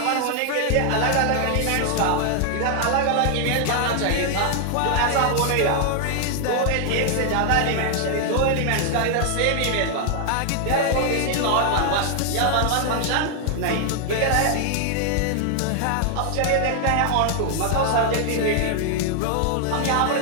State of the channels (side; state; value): both; different; correlation 0.00